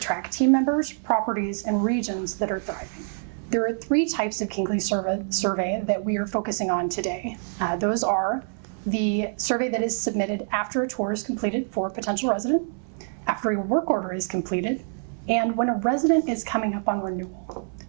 team members, properties, and regions that are thriving. There are 3 types of Kingsley survey that we are focusing on today. Those are the survey that is submitted after a tour is completed for a potential resident, after a work order is completed, and when a resident is coming up on renewal.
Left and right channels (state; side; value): silent; left; 61 dB below the other